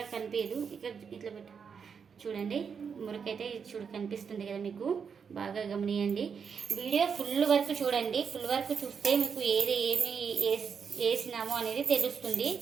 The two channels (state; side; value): quieter; left; 6.4 dB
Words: కనిపించదు. ఇక్కడ ఇట్లా పెట్టు చూడండి మురికైతే చూడు కనిపిస్తుంది కదా మీకు, బాగా గమనియండి. వీడియో ఫుల్ వరకు చూడండి. ఫుల్ వరకు చూస్తే మీకు ఏమి వేసినామో అనేది తెలుస్తుంది,